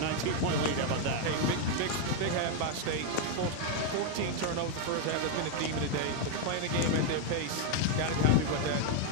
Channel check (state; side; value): different; both; correlation 0.01